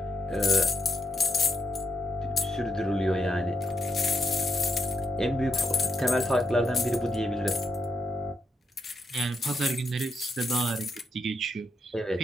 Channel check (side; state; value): both; normal; correlation 0.81